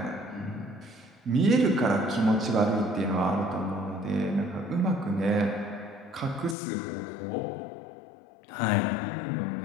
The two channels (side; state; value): right; drops out; at 6.6 s